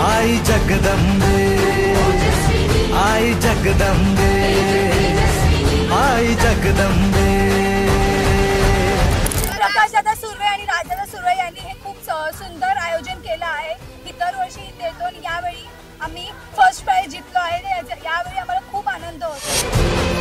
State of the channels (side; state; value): both; identical; correlation 1.00